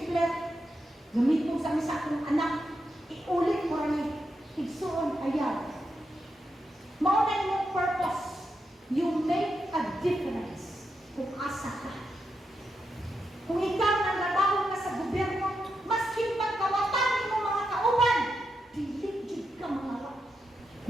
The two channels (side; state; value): both; normal; correlation 0.85